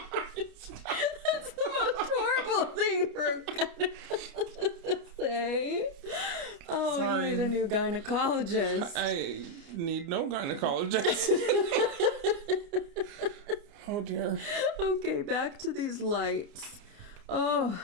That's the most horrible thing for a gynecologist to say. Oh, Sorry. you need a new gynecologist. I need no gynecologist. Oh dear. Okay, back to these lights.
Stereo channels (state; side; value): late; left; 29 ms